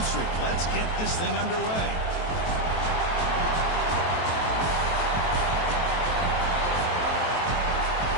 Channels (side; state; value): right; late; 23 ms